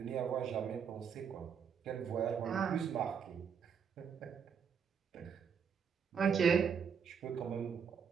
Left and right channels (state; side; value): quieter; left; 7.0 dB